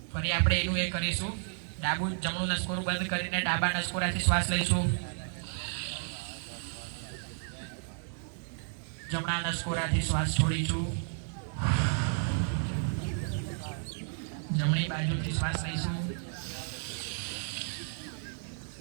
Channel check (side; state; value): left; silent; digital silence